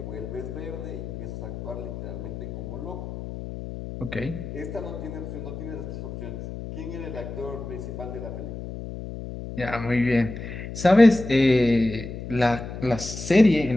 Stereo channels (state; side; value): noise; left; hum, 9 dB below the sound